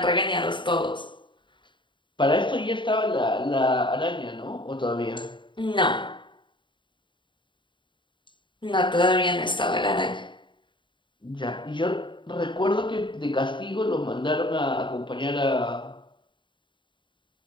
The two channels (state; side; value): late; right; 0.23 ms